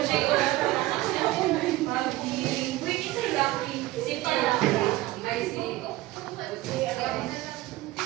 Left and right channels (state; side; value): quieter; left; 17.7 dB